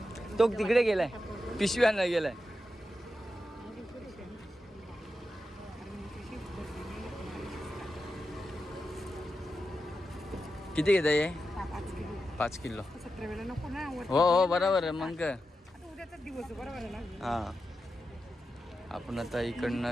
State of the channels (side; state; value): both; normal; correlation 0.89